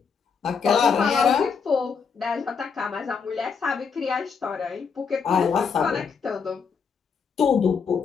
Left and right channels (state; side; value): quieter; right; 5.9 dB